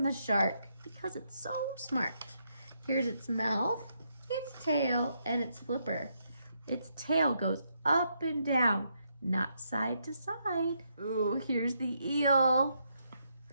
the shark because it's so smart. Here's its mouth, its tail, and its flipper. Its tail goes up and down, not side to side. Ooh, here's the eel.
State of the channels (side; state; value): both; inverted; correlation -0.78